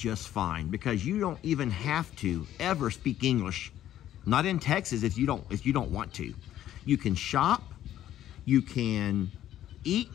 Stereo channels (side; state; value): right; quieter; 12.1 dB